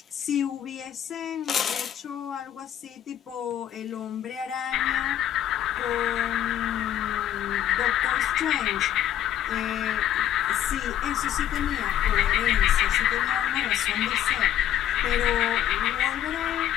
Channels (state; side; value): quieter; right; 11.1 dB